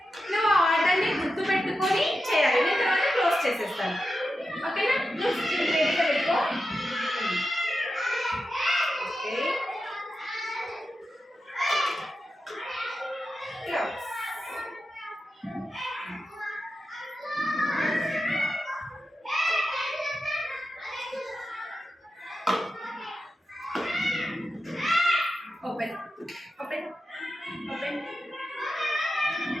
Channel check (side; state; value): both; normal; correlation 0.90